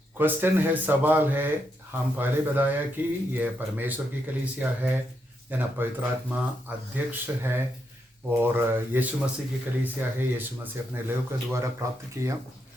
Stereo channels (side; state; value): both; normal; correlation 0.81